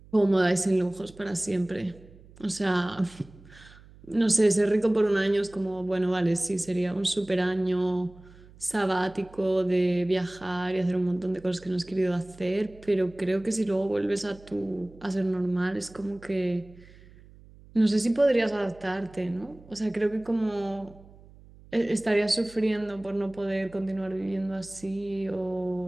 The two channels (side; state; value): right; noise; hum, 23 dB below the sound